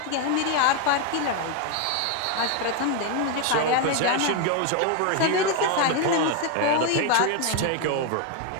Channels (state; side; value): different; both; correlation 0.01